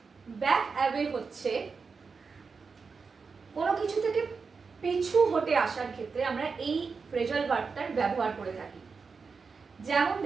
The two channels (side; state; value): left; quieter; 5.0 dB